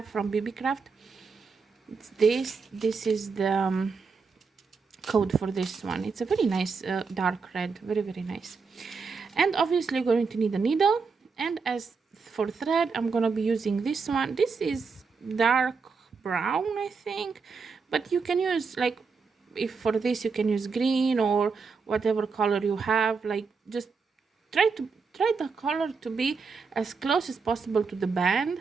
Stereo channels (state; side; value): quieter; left; 5.0 dB